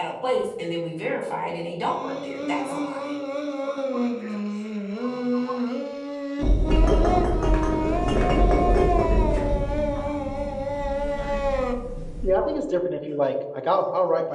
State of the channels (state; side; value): identical; both; correlation 1.00